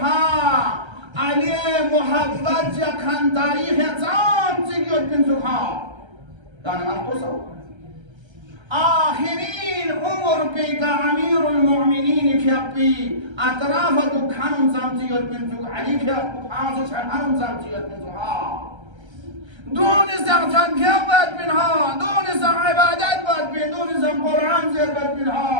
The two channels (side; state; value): left; late; 1.3 ms